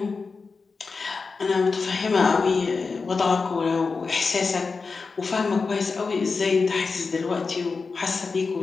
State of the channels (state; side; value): quieter; right; 4.5 dB